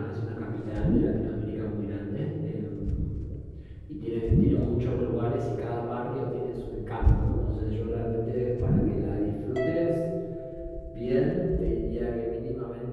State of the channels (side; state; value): both; identical; correlation 1.00